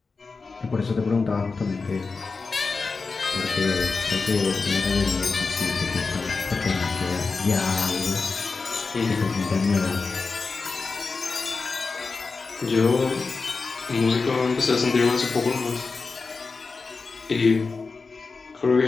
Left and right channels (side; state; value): right; quieter; 4.3 dB